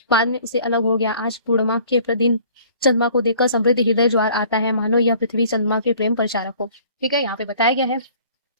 बाद में उसे अलग हो गया। आज पूर्णिमा के दिन चंद्रमा को देखकर समृद्ध हृदय ज्वार आता है, मानो यह पृथ्वी चंद्रमा के प्रेम प्रचारक हो। ठीक है, यहाँ पे बताया गया है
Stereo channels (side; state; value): both; inverted; correlation -0.53